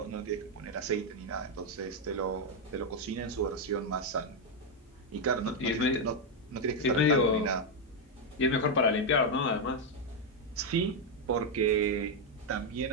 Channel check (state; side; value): normal; both; correlation 0.02